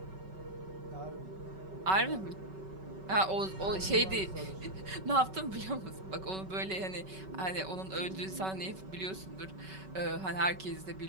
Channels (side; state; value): left; late; 5.3 ms